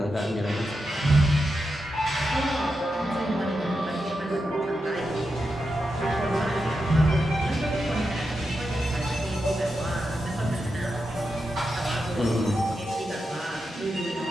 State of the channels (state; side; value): normal; both; correlation 0.88